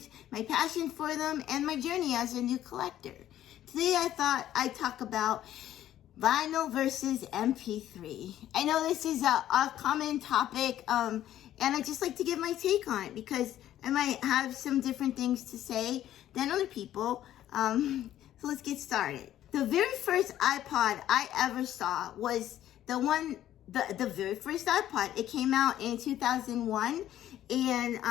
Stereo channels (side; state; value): right; quieter; 12.3 dB